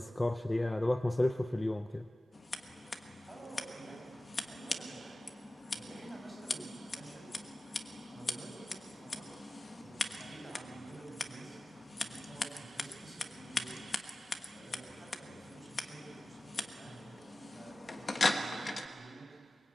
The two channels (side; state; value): both; normal; correlation 0.97